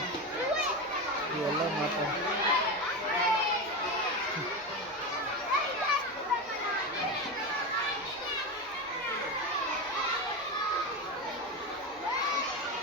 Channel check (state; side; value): normal; both; correlation 0.19